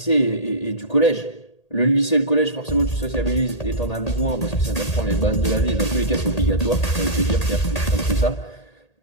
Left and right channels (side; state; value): right; late; 1.8 ms